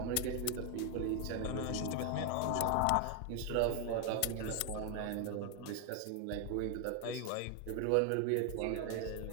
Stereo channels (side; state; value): both; different; correlation 0.01